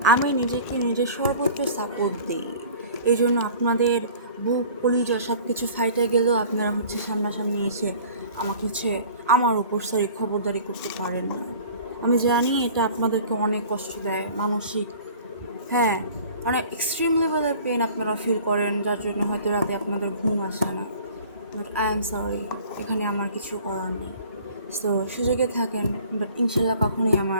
আমি নিজেকে নিজের সর্বোচ্চ সাপোর্ট দিই। এই জন্য আপনাদের বুক কলিজা সব কিছু ফাইটে গেলেও আপনারা হচ্ছে সামনাসামনি এসে আমার উপর খবরদারি করতে পারেন না। আমি জানি এটা আপনাদেরকে অনেক কষ্ট দেয় মানসিক, হ্যাঁ, মানে এক্সট্রিম লেভেলের পেন আপনারা ফিল করেন, যার জন্য হয়তো রাতে আপনাদের ঘুম আসে না। বাট আই এম সরি, এখানে আমার কিছু করার নেই। সো সুযোগে থাকেন, বাট ইনশাল্লাহ কখনোই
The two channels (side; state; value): both; inverted; correlation -0.46